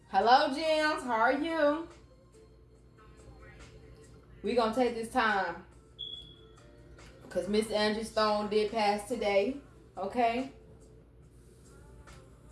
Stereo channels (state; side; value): identical; both; correlation 1.00